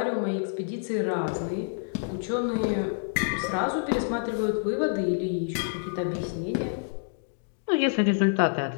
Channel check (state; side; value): silent; right; digital silence